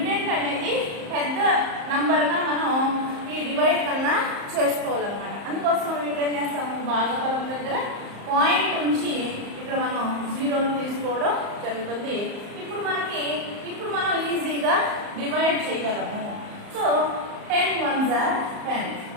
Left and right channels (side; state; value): left; late; 34 ms